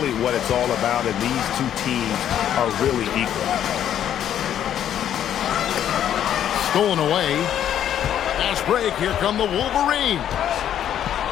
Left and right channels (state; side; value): quieter; right; 10.3 dB